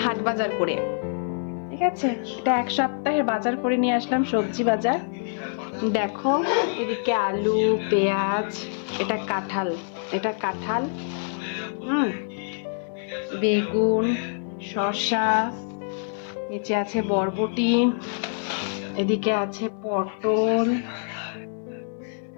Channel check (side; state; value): right; silent; digital silence